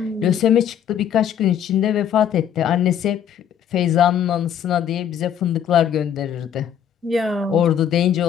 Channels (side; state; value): right; quieter; 9.1 dB